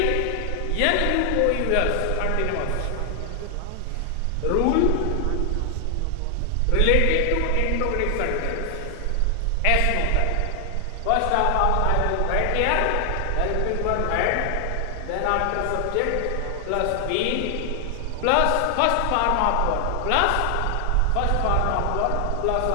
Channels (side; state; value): both; different; correlation 0.00